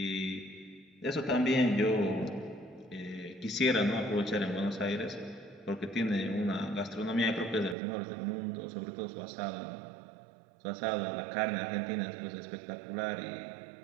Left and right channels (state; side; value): drops out; left; at 7.8 s